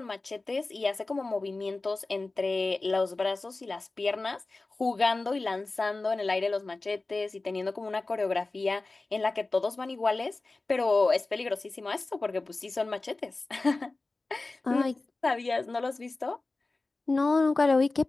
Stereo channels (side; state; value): right; quieter; 3.3 dB